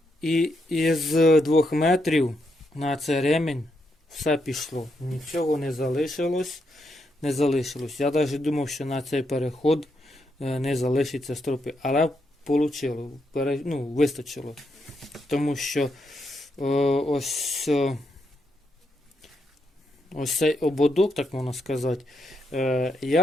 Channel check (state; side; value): normal; both; correlation 0.80